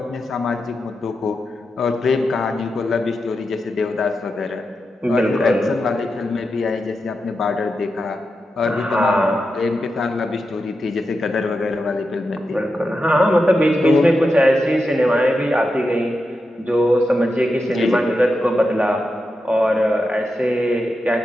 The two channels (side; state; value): both; normal; correlation 0.88